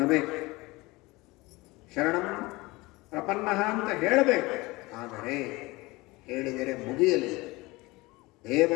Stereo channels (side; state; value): right; quieter; 22.1 dB